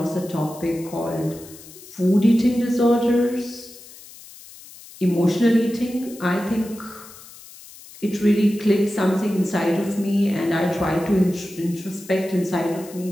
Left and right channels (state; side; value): noise; left; hiss, 19 dB below the sound